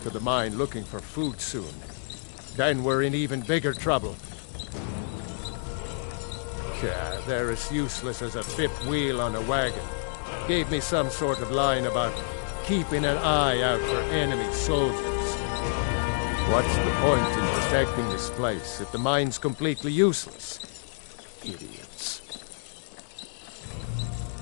of the mine looking for food soon. Then we're in even bigger trouble. They're as useless as a fifth wheel on a wagon. Gave me some sort of line about keeping an eye out for enemy soldiers. What's the point in protecting this place if the mine's completely useless? Idiots.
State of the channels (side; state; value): right; silent; digital silence